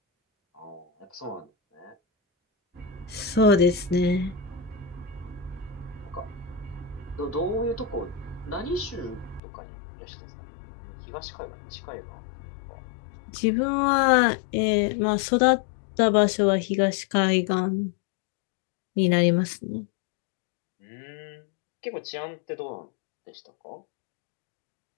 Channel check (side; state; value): right; drops out; at 9.4 s